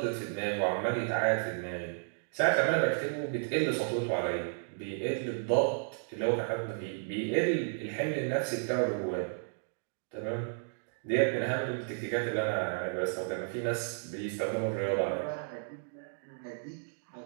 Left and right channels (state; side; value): silent; left; digital silence